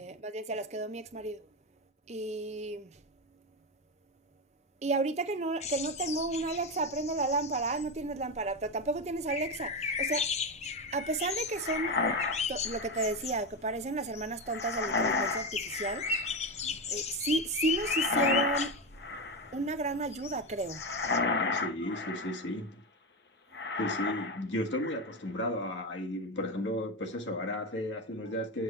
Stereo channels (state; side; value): normal; both; correlation 0.14